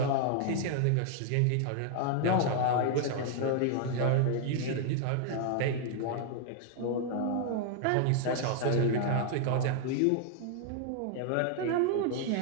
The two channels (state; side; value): different; both; correlation 0.00